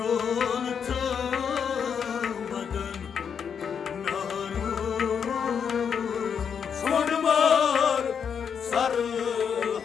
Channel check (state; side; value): quieter; right; 7.1 dB